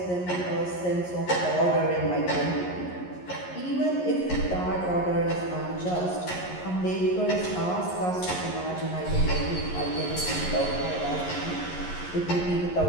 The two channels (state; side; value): late; right; 11 ms